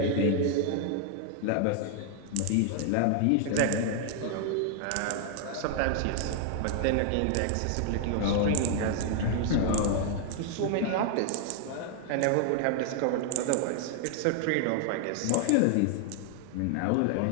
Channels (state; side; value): different; both; correlation 0.00